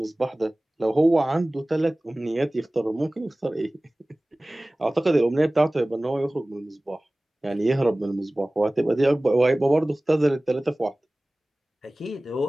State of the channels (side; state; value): both; normal; correlation 0.98